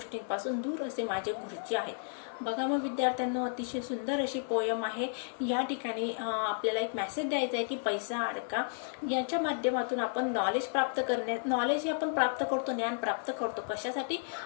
दूर असे माझे गुरुजी आहेत. बघा मग विद्यार्थ्यांना अतिशय सुंदर अशी पोयम आहे. या ठिकाणी आपल्याला एक मेसेज द्यायचा आहे की पैसा अडका याच्या माध्यमातून आपण नॉलेज हे आपण प्राप्त करतो, ज्ञान प्राप्त करतो. कशासाठी?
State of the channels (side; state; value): right; silent; 56 dB below the other